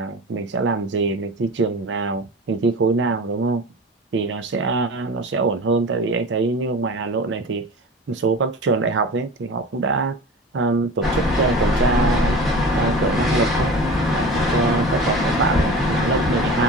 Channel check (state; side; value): normal; both; correlation 0.34